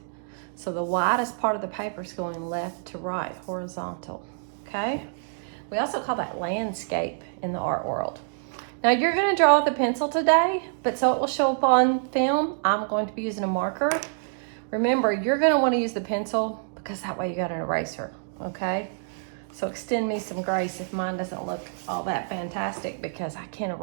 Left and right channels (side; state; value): left; silent; digital silence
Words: So the widest part of the paper is going left to right, horizontal, okay? We also call that landscape in the art world. Now you're going to draw with a pencil today, but so it will show up on film, I'm going to be using a marker. Remember, you're going to want to use the pencil because that way you got an eraser, okay? So extend me some grace if mine doesn't look all that fantastic because I can't